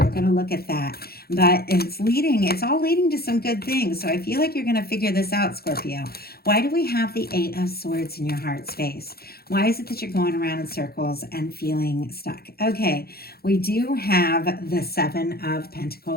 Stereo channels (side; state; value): right; late; 0.45 ms